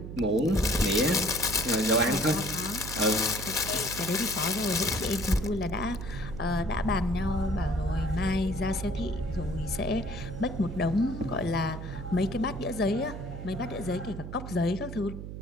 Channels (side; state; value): right; noise; hum, 9 dB below the sound